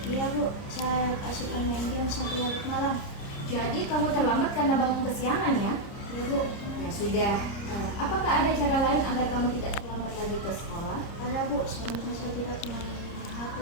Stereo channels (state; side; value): late; right; 30 ms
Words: Iya Bu, saya kasihkan main game sampai larut malam. Jadi kamu terlambat karena bangun kesiangan ya? Iya Bu. Ya sudah. Apakah ada cara lain agar kamu tidak terlambat lagi ke sekolah? Ada Bu, seharusnya saya tidak main HP